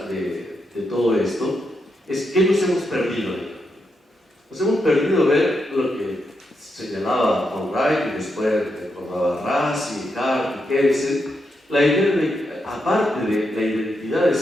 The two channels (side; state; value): both; normal; correlation 0.83